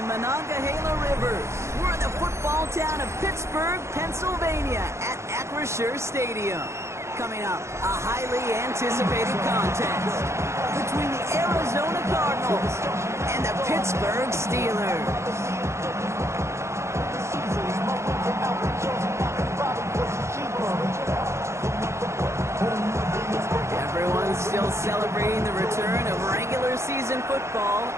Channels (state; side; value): late; left; 0.13 ms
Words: Monongahela Rivers, we're in the football town of Pittsburgh, Pennsylvania at Acrisure Stadium. Coming up, a highly anticipated contest between the Arizona Cardinals and the Pittsburgh Steelers. Everyone's still celebrating the return of regular season football,